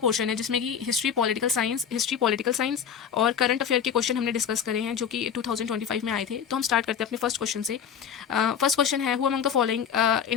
है जिसमें कि हिस्ट्री पॉलिटिकल साइंस और करंट अफेयर के क्वेश्चन हमने डिस्कस करे हैं जो कि 2025 में आए थे। तो हम स्टार्ट करते हैं अपने फर्स्ट क्वेश्चन से। फर्स्ट क्वेश्चन है, who among the following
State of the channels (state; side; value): quieter; right; 7.8 dB